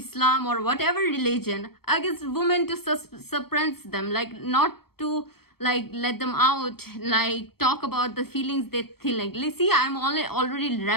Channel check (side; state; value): right; late; 0.95 ms